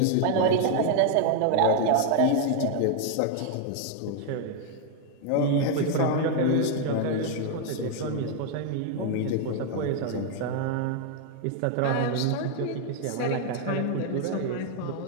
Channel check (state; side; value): different; both; correlation 0.00